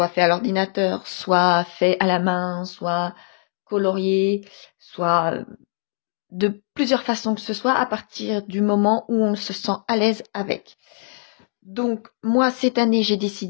fait à l'ordinateur, soit fait à la main, soit colorié, soit de plusieurs façons que ce soit à partir du moment où on se sent à l'aise avec. Donc, moi, cette année, j'ai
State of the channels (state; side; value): silent; right; digital silence